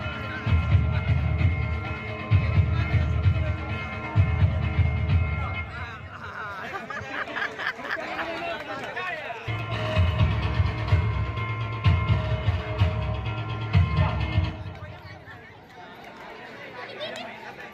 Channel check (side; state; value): both; identical; correlation 1.00